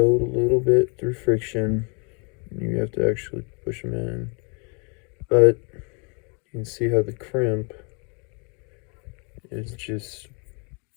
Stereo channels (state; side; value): quieter; right; 35.4 dB